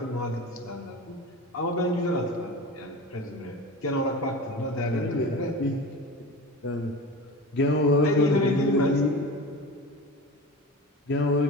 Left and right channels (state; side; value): normal; both; correlation 0.32